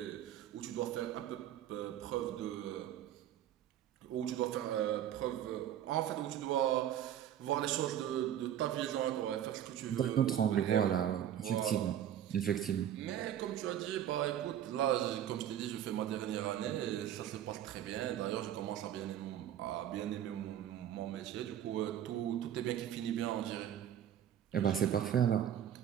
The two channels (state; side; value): quieter; left; 10.6 dB